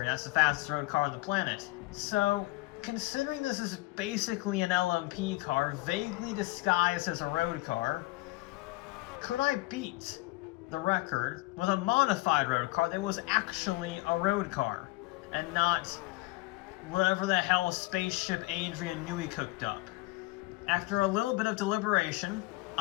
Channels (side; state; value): right; quieter; 21.2 dB